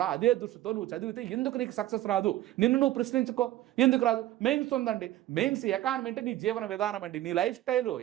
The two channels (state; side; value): quieter; left; 14.6 dB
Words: అదే దృష్టితో నువ్వు చదివితే ఎందుకు నీకు సక్సెస్ రాదు? నిన్ను నువ్వు ప్రశ్నించుకో, ఎందుకు రాదు? మెయిన్స్ ఉందండి. మెయిన్స్ ఎకానమీ అంటే నీ జీవన విధానం అండి, నీ లైఫ్ స్టైల్.